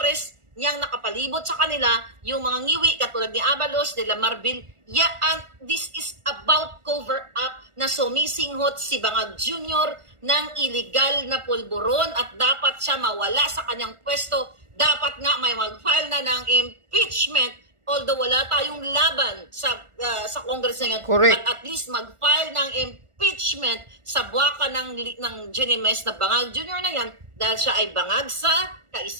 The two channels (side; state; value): left; late; 1.4 ms